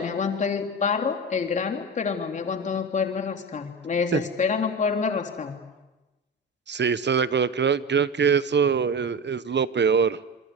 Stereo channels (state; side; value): normal; both; correlation 0.25